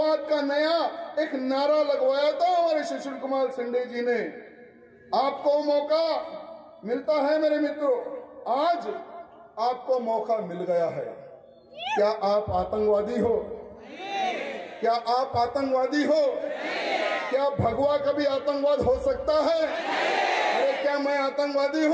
का नया एक नारा लगवाया था हमारे सुशील कुमार शिंदे जी ने। आपको मौका मिलता है मेरे मित्रों, आज आपको मौका मिल गया है। क्या आप आतंकवादी हो? क्या आप आतंकवादी हो? क्या भगवा कभी आतंकवाद हो सकता है? अरे क्या मैं आतंकवादी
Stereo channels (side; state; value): both; identical; correlation 1.00